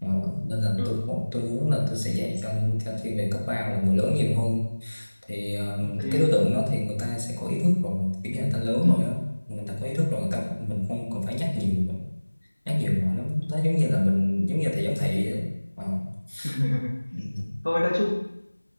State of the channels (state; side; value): inverted; both; correlation -1.00